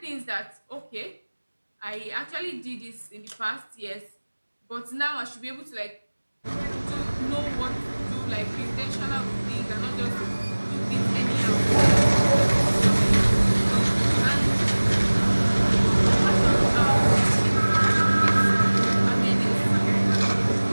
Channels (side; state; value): both; inverted; correlation -1.00